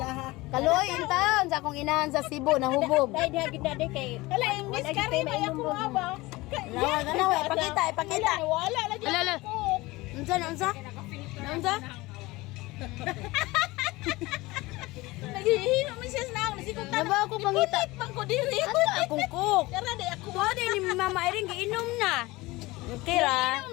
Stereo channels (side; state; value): right; quieter; 20.9 dB